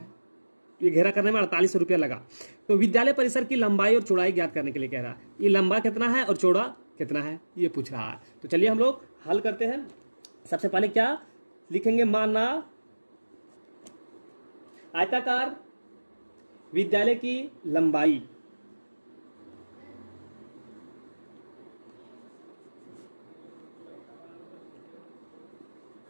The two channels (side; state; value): both; inverted; correlation -1.00